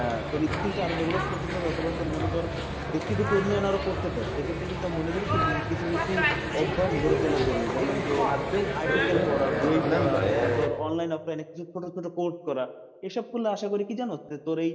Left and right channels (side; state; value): both; identical; correlation 1.00